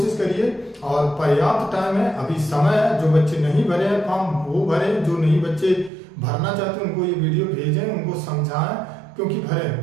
करिए और पर्याप्त टाइम है, अभी समय है। जो बच्चे नहीं भरे हैं फॉर्म वो भरें, जो नहीं बच्चे भरना चाहते हैं उनको ये वीडियो भेजें, उनको समझाएं, क्योंकि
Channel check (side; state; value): left; drops out; at 5.9 s